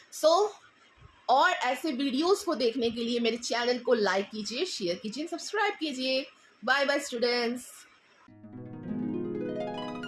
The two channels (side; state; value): both; identical; correlation 1.00